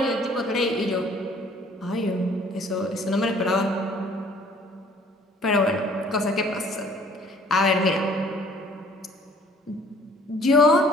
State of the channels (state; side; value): normal; both; correlation 0.56